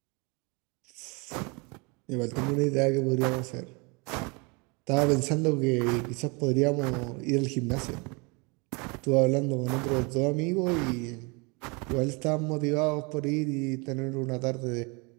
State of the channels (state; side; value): quieter; left; 29.7 dB